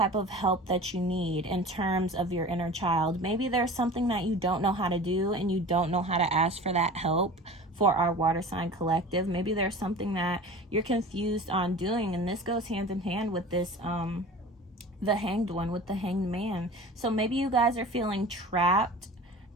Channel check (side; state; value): both; normal; correlation 0.38